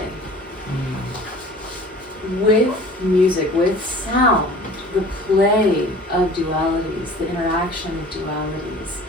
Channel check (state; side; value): normal; both; correlation 0.45